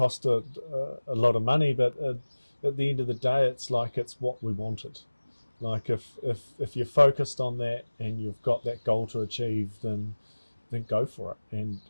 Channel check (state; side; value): inverted; both; correlation -1.00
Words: a lot of money, but at the end of the day, it's like it's what we wanted. Like if you're focused on that and you've got that goal to achieve, then go for it